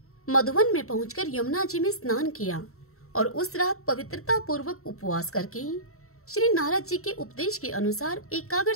मधुवन में पहुंचकर यमुना जी में स्नान किया और उस रात पवित्रता पूर्वक उपवास करके श्री नारद जी के उपदेश के अनुसार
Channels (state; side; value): late; right; 0.63 ms